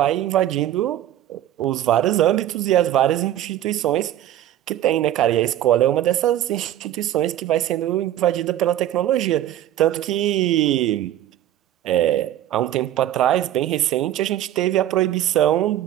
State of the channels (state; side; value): quieter; left; 12.5 dB